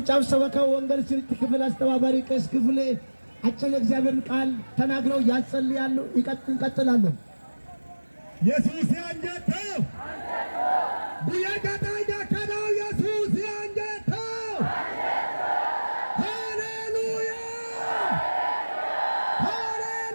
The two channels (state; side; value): inverted; both; correlation -1.00